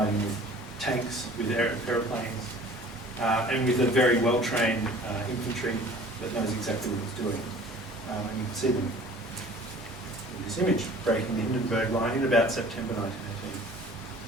with tanks, with aeroplanes, and with a very well-trained infantry that knows exactly what it's doing. And you can see them this image, breaking the Hindenburg Line in about September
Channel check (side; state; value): both; normal; correlation 0.48